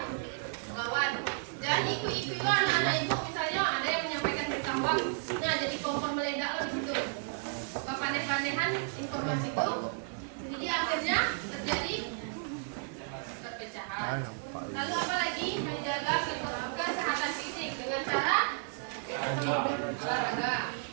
lawan. Dan ikut anak-anak ibu misalnya ada yang menyampaikan berita hoax, nah jadi kompor meledak lah gitu. Panen-panehan informasi itu, jadi akhirnya terjadi perpecahan. Lalu apa lagi? Menjaga kesehatan fisik dengan cara olahraga.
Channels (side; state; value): left; silent; 56 dB below the other